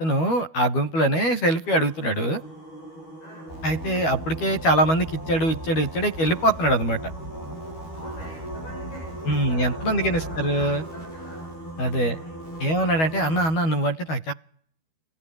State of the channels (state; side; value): late; right; 12 ms